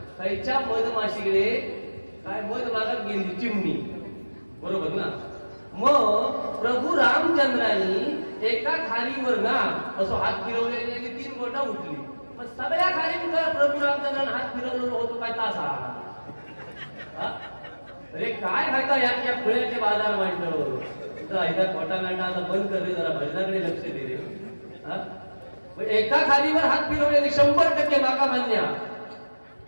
खैच्या मधमाशीकडे काय मध मागत गेली चिमणी बरोबर ना. मग प्रभू रामचंद्रांनी एका खारीवर ना असं हात फिरवलेले 3 बोटा उठली. मग सगळ्या खारीवर प्रभू रामचंद्रांनी हात फिरवलेला होतो काय तासा. अरे काय खायचा या फुल्याचे बाजार मांडलं खोटा नाटा आता बंद कर रे जरा भजनाकडे लक्ष दे रे. एका खालीवर हात फिरवलेले 100% माका मान्य.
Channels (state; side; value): inverted; both; correlation -1.00